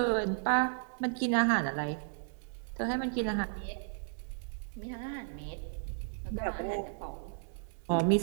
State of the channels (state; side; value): silent; left; digital silence